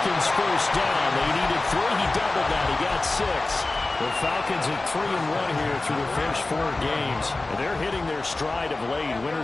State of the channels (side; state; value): right; quieter; 3.1 dB